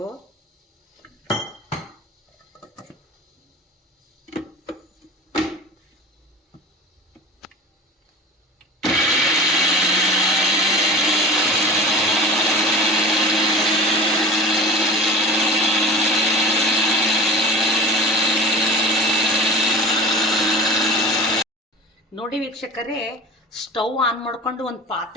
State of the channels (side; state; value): both; normal; correlation 0.36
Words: ನೋಡಿ ವೀಕ್ಷಕರೇ, ಸ್ಟವ್ ಆನ್ ಮಾಡ್ಕೊಂಡು ಒಂದು